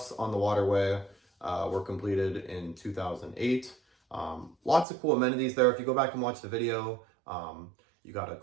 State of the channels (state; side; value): drops out; left; at 4.9 s